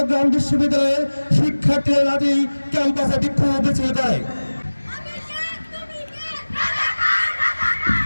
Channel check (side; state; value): both; inverted; correlation -1.00